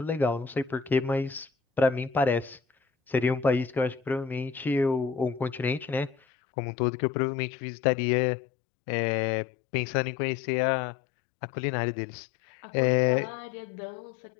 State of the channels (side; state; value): right; drops out; at 6.2 s